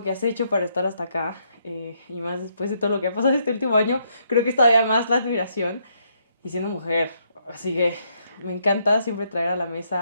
que has hecho para estar hasta acá y más después de todo lo que ha pasado este último año, creo que es todavía más la admiración y siendo mujer. Así que me encanta siempre traer a la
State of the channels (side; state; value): both; inverted; correlation -0.74